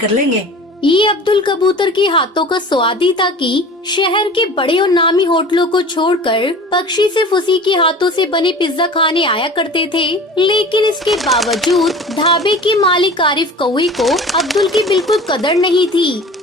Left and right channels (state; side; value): normal; both; correlation 0.39